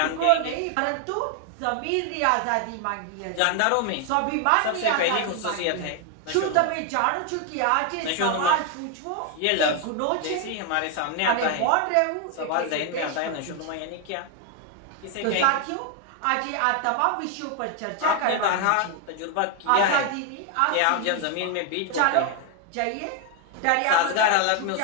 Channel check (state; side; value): different; both; correlation 0.01